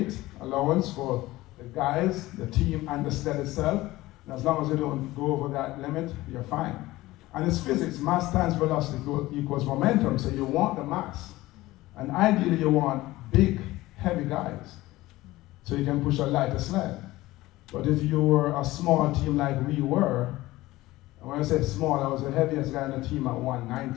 allowance for the guys, the team, and the sled itself. And as long as you don't go over that limit, you're fine. And it's physics. Mass times velocity equals momentum, so you want the mass. And ideally, you want big, heavy guys, so you can push a lighter sled. But if you were a small team like we were, and when I say small, I was the heaviest guy on the team at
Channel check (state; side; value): quieter; right; 18.1 dB